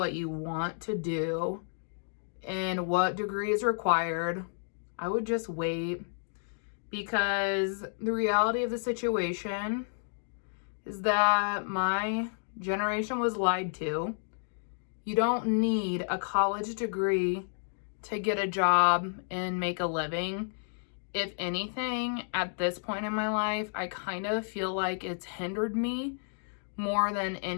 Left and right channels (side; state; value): right; silent; digital silence